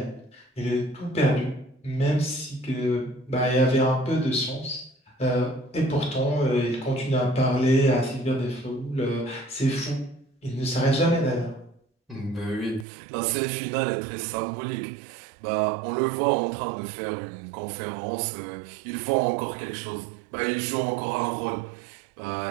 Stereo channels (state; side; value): drops out; left; at 12.9 s